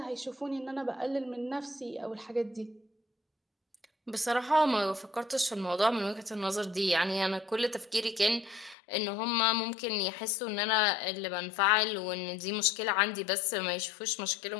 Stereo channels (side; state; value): right; drops out; at 8.8 s